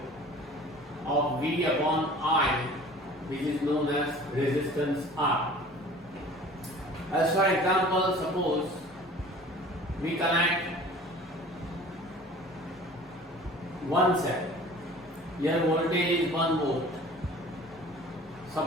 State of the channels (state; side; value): normal; both; correlation 0.45